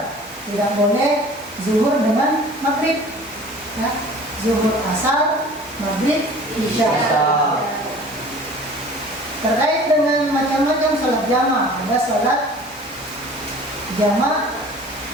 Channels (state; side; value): normal; both; correlation 0.46